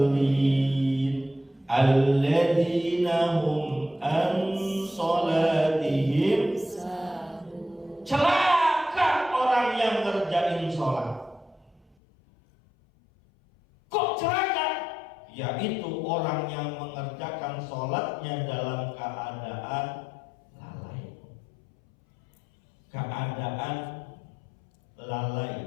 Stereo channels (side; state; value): right; drops out; at 12.0 s